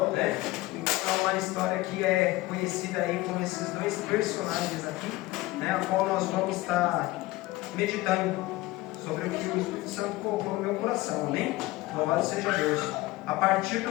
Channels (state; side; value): quieter; right; 19.1 dB